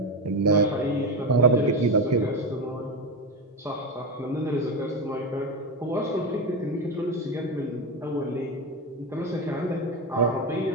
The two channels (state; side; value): normal; both; correlation 0.15